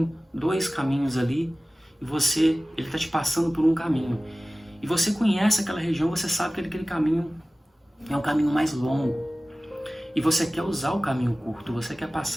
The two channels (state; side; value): normal; both; correlation 0.96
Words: dois caminhos ali. E ele está te passando por um caminho. E você conhece aquela região, você sabe que aquele caminho é um caminho mais longo. E você quer usar o caminho curto, você quer